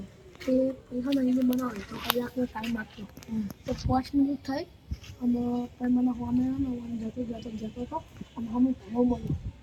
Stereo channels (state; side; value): identical; both; correlation 1.00